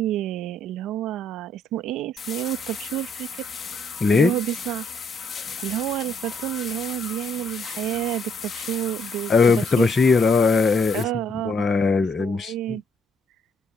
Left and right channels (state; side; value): normal; both; correlation 0.70